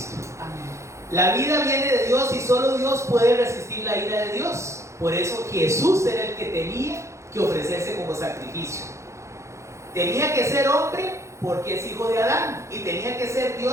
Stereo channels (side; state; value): left; late; 0.14 ms